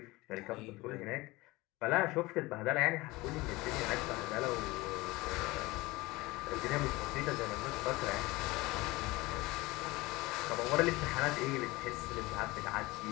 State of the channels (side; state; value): right; quieter; 21.3 dB